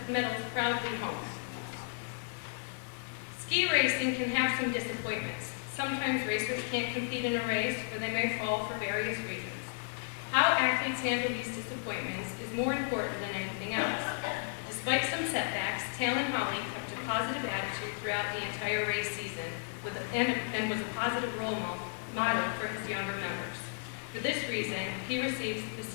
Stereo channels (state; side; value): silent; right; digital silence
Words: proudly home. Ski racing can have some disappointments. Sometimes racers can't compete in a race or they may fall for various reasons. How athletes handle these disappointments is more important than anything else. Despite some setbacks, Talon Holly kept a positive attitude throughout the entire race season and was a positive role model for his younger members. For this reason, he receives the